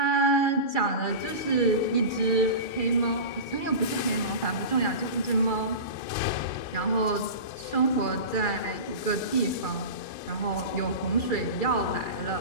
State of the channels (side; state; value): right; late; 2.3 ms